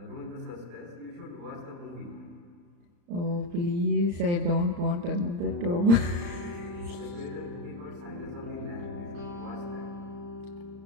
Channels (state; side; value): late; left; 35 ms